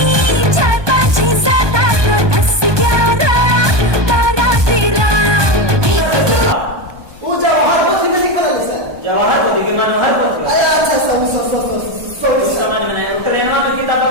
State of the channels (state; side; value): late; left; 1.2 ms